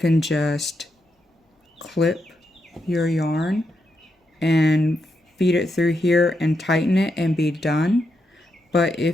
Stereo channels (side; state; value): both; normal; correlation 0.83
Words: just clip your yarn and feed it through here and tighten it and be done. But